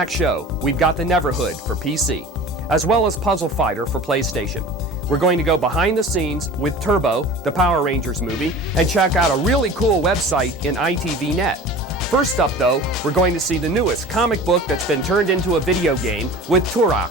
show, we've got the Neverhood for PC, as well as Puzzle Fighter for PlayStation. We're going to go behind the scenes with Turbo, the Power Rangers movie, and check out a really cool website in ITVNet. First up, though, we're going to see the newest comic book that's been turned into a video game with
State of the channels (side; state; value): both; normal; correlation 0.39